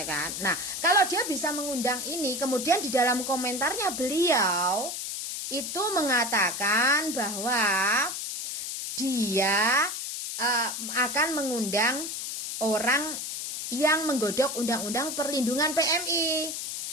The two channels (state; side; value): noise; left; hiss, 5 dB below the sound